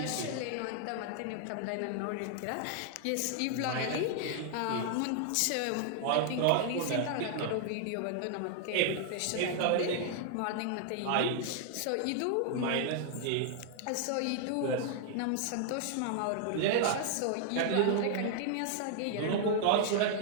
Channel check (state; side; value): different; both; correlation 0.00